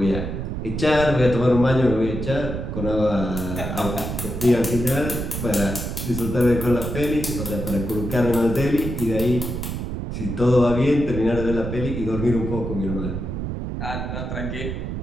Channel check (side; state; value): right; noise; rumble, 4 dB below the sound